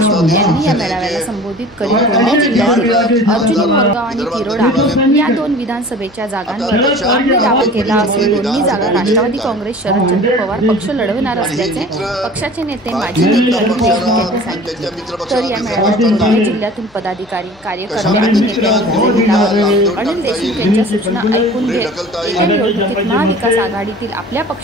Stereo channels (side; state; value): left; noise; hum, 29 dB below the sound